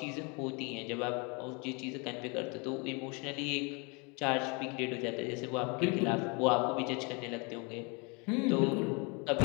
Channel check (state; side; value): quieter; right; 31.3 dB